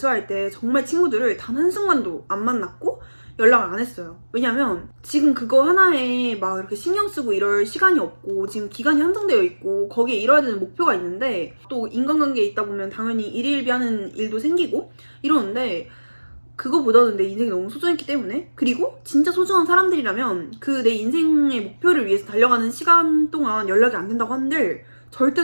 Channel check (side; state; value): both; inverted; correlation -1.00